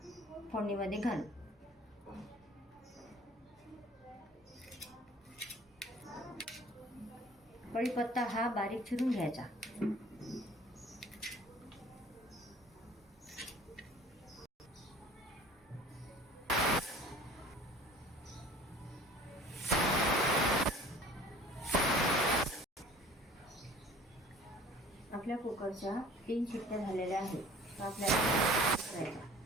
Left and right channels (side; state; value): both; normal; correlation 0.48